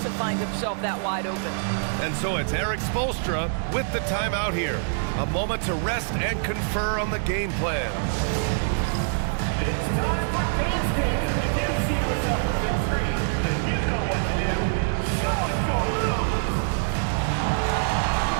to find himself that wide open. And so it's Eric Spoelstra with the timeout here. A moment to rest and confer on the game plan. It's time for dance cam. If you see yourself on the big screen, then you know what to do. Show us your moves.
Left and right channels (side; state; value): left; silent; 62 dB below the other